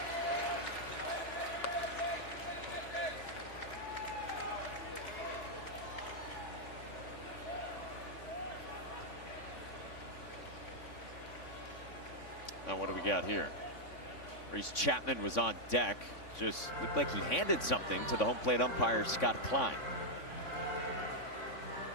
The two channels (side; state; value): right; late; 3.5 ms